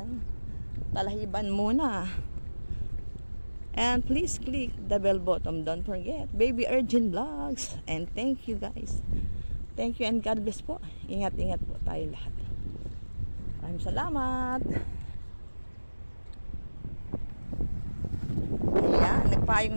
Talahiban muna. And please click the bell button. Don't forget, Baby Urgent Vlogs. And thank you guys. Thank you and God bless po. Ingat-ingat po tayo lahat. Maraming salamat. Ayan, nagpayong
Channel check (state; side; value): inverted; both; correlation -1.00